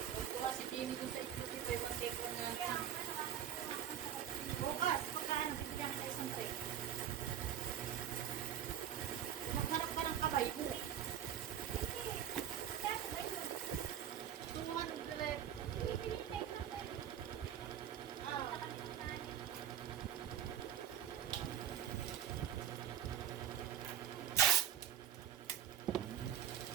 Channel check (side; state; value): left; quieter; 10.0 dB